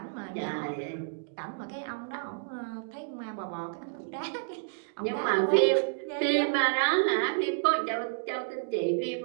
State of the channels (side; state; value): left; silent; digital silence